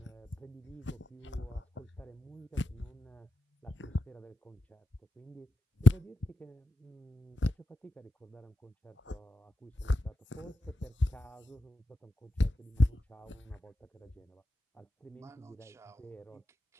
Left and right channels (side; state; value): both; normal; correlation 0.90